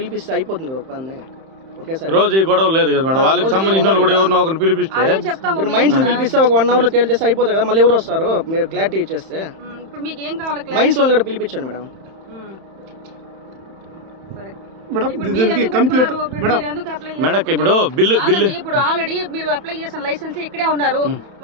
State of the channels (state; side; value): late; left; 31 ms